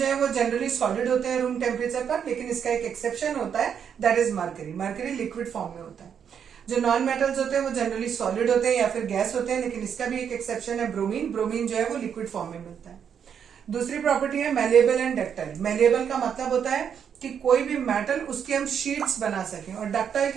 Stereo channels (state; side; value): quieter; left; 7.8 dB